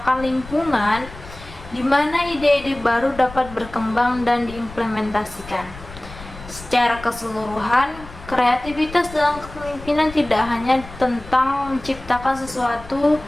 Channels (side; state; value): left; noise; rumble, 16 dB below the sound